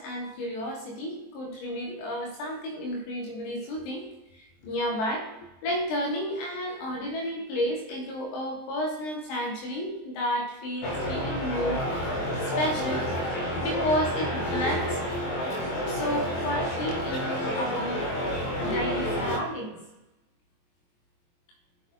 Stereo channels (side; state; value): right; late; 23 ms